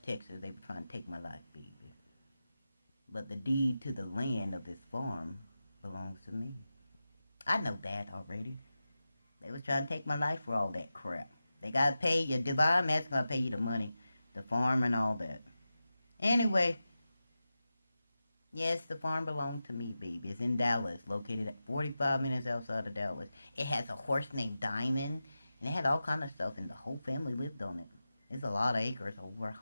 Texas. They were trying to take my life, baby. But the deed to the land of this farm belongs to me. I know that already. They was trying to take my life for all that crap. They gotta pay you. Divine Master gotta pay you the money. The farm and all that. Anyway. Yes, the farm belonged to me, baby. It's in Dallas. Located at 45 minutes outside of Dallas. It has a horse named Diamond. And it had all kind of stuff. And the whole family lived on it. It's a lot of acres. Over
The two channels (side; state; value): both; inverted; correlation -0.93